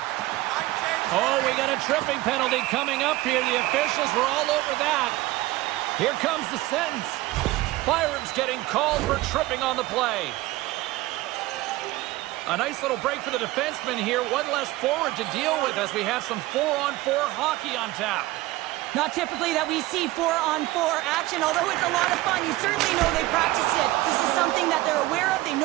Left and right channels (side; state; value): left; quieter; 18.3 dB